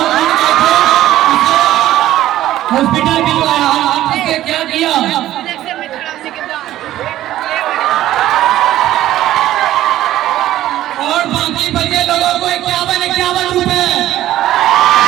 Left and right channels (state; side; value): quieter; left; 13.8 dB